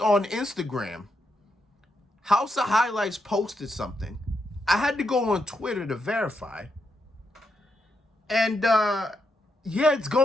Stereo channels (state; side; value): normal; both; correlation 0.82